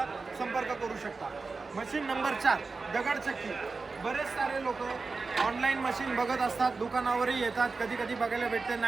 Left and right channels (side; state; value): left; quieter; 4.2 dB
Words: संपर्क करू शकता. मशीन नंबर 4 दगडचक्की. बरेच सारे लोक ऑनलाईन मशीन बघत असतात, दुकानावरही येतात, कधी कधी बघायला भेटते,